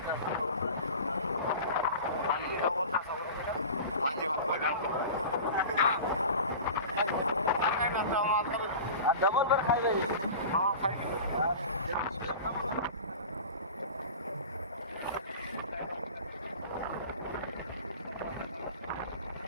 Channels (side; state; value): both; inverted; correlation -0.35